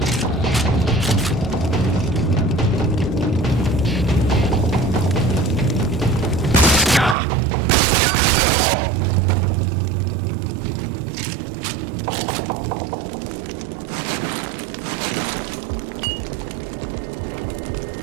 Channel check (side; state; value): left; drops out; at 7.2 s